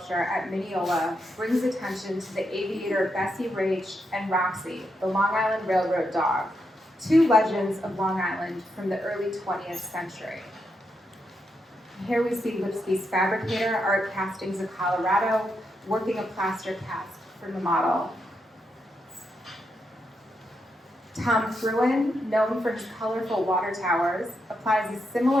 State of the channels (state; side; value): normal; both; correlation 0.82